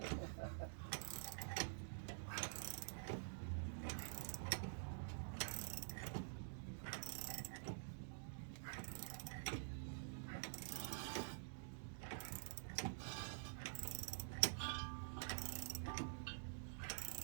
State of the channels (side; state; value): left; silent; digital silence